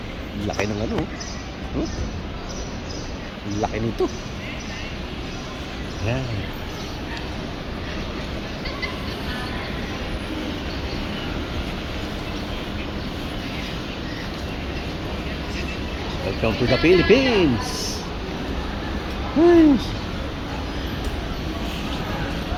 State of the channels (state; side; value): identical; both; correlation 1.00